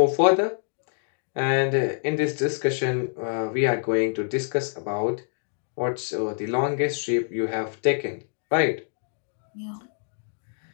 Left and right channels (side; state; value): right; silent; digital silence